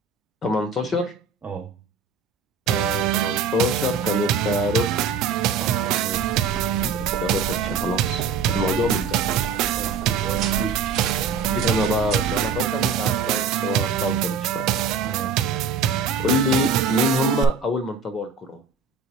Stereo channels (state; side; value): quieter; left; 4.7 dB